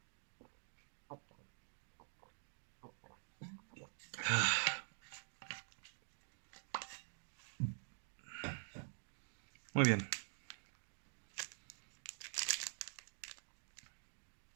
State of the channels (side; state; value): left; silent; digital silence